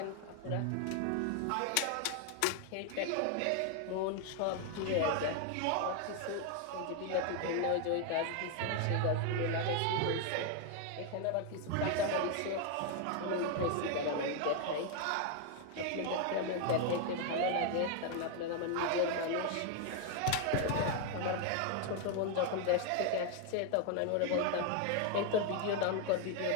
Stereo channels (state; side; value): different; both; correlation 0.01